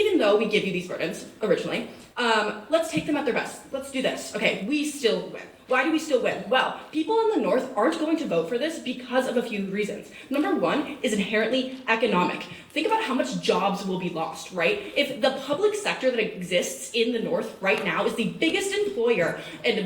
though we give you these burdens originally, let's take them at their best. Let's do this. Okay, we still win. Why do we still win? Well, people in the North aren't going to vote for this because of a few reasons. Number one is inherently economic. Think about how much jobs will be lost, right? If the public sector that exists in the North right now is the biggest employer and the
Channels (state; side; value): identical; both; correlation 1.00